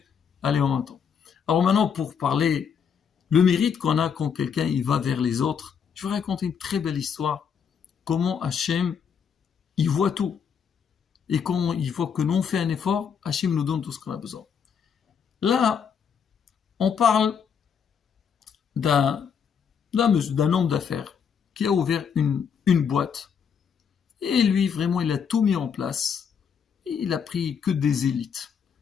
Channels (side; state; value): right; quieter; 7.1 dB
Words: aller en même temps. Alors maintenant, pour parler le mérite qu'on a quand quelqu'un il va vers les autres, je vais raconter une très belle histoire. Comment Hachem, il voit tout. Et quand il voit que nous on fait un effort, Hachem nous donne tout ce qu'on a besoin. Là, on parle d'un homme d'affaires qui a ouvert une boîte. Et lui, vraiment, il a tout mis en place. Et il a pris que des élites.